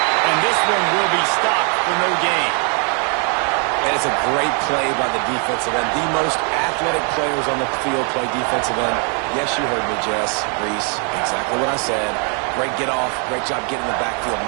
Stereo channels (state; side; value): quieter; left; 39.0 dB